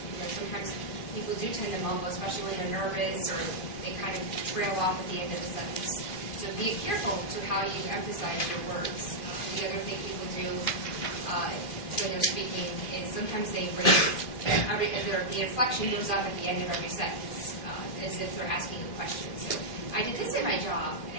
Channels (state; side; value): late; right; 2.5 ms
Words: sometimes people do tend to mumble, especially when they're nervous or they kind of trail off at the end of the sentence. So be careful to how you emphasize your words. The other thing people do when they're speaking is sometimes they raise, the inflection goes up at the end of every sentence, as if they're asking a question. So I did this in my job,